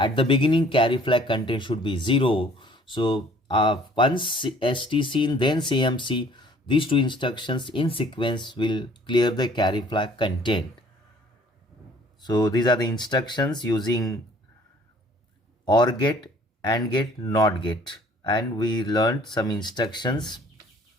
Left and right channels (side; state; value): both; normal; correlation 0.55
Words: the beginning carry flag content should be 0. So once STC then CMC, these two instructions in sequence will clear the carry flag content. So these are the instructions using OR gate, AND gate, NOT gate, and we learned some instructions.